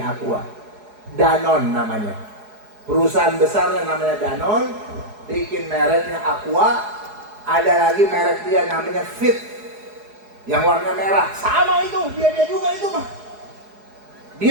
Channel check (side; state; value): left; late; 4.8 ms